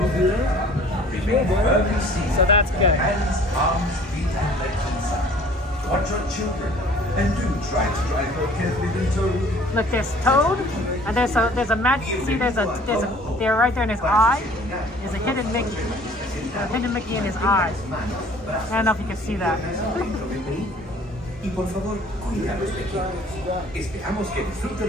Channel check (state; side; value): normal; both; correlation 0.52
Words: motor car, remain firmly seated. So that's good. Hands, arms, feet, and legs inside. Watch your children, and do try to drive more carefully than Toad. Look, there's Toad, and there's a magic. See, there's a there right there in his eye. There's a hidden Mickey. A hidden Mickey in his eye. I don't know if you can see that. Y por favor, cuida a los pequeños. Esperamos que disfrute